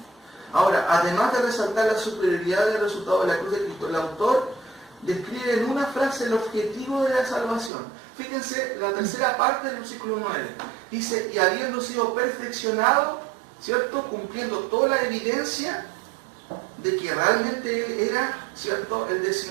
Ahora, además de resaltar la superioridad del resultado de la cruz de Cristo, el autor describe en una frase el objetivo de la salvación. Fíjense la tercera parte del versículo 9. Dice, y habiendo sido perfeccionado, ¿cierto? Cumpliendo toda la evidencia de que realmente Él era, ¿cierto? El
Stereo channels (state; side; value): drops out; left; at 7.7 s